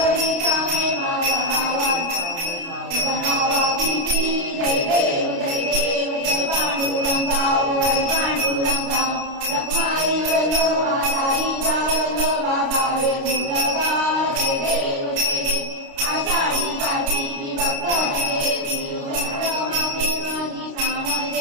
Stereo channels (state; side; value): late; left; 29 ms